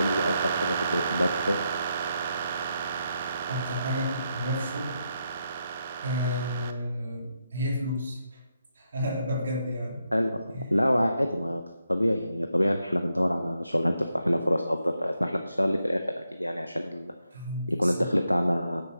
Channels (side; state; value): both; inverted; correlation -0.82